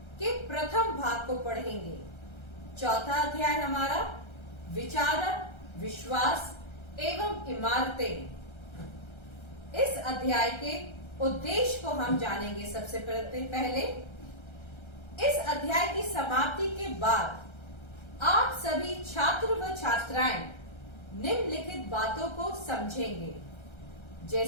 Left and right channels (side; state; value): right; late; 1.3 ms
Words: के प्रथम भाग को पढ़ेंगे। चौथा अध्याय हमारा विचारक, विश्वास एवं इमारतें। इस अध्याय के उद्देश्य को हम जानेंगे। सबसे पहले इस अध्याय की समाप्ति के बाद आप सभी छात्र व छात्राएं निम्नलिखित बातों को समझेंगे,